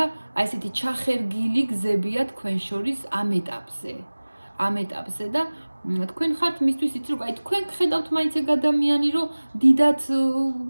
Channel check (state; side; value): inverted; both; correlation -1.00